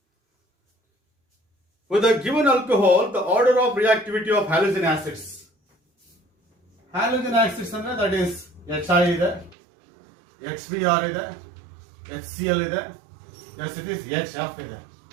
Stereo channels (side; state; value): left; drops out; at 9.6 s